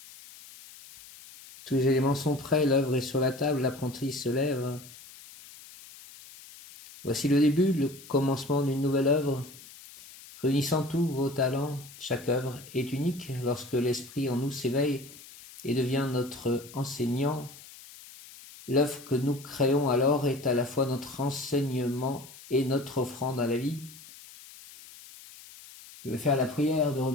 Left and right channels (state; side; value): noise; left; hiss, 19 dB below the sound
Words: Tous les éléments sont prêts, l'œuvre est sur la table, l'apprenti se lève. Voici le début, le commencement d'une nouvelle œuvre. Réunissant tous vos talents, chaque œuvre est unique. Lorsque l'esprit en nous s'éveille et devient notre enseignant, l'œuvre que nous créons alors est à la fois notre enseignement et notre offrande à la vie. Je vais faire la prière de